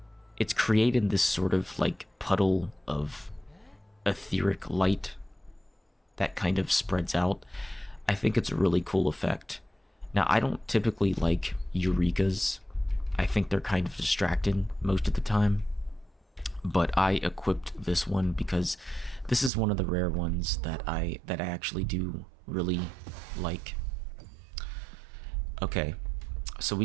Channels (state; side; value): drops out; left; at 19.5 s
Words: created this sort of like puddle of etheric light that kind of spreads out. I think it's a really cool effect. Now, I don't typically like eurekas. I think they're kind of distracting most of the time. But I equipped this one because this is one of the rare ones that I actually do really like. Okay, so we